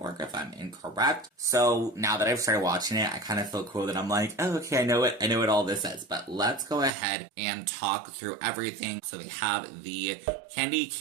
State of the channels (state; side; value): drops out; left; at 6.9 s